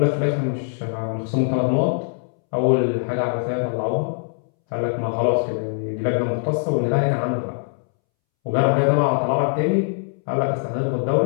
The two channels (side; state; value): right; silent; 64 dB below the other